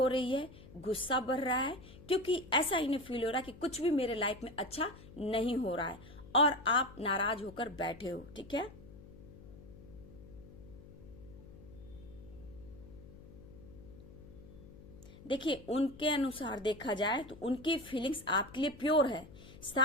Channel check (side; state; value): left; noise; hum, 18 dB below the sound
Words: रही है, गुस्सा बढ़ रहा है, क्योंकि ऐसा इन्हें फील हो रहा है कि कुछ भी मेरे लाइफ में अच्छा नहीं हो रहा है और आप नाराज होकर बैठे हो। ठीक है, देखिए उनके अनुसार देखा जाए तो उनकी फीलिंग्स आपके लिए प्योर है।